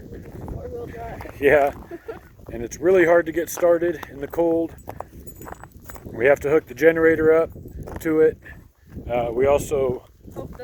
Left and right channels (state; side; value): identical; both; correlation 1.00